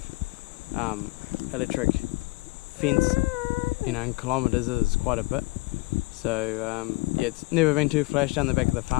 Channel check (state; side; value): quieter; right; 23.7 dB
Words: electric fence, in kilometres is quite a bit. So yeah, it's never been too flash down the back of the